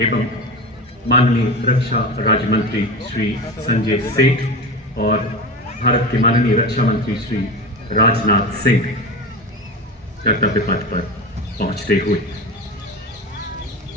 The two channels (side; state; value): both; normal; correlation 0.26